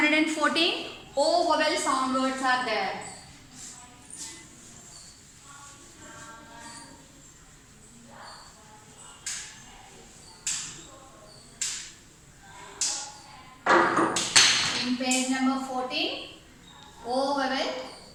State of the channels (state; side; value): identical; both; correlation 1.00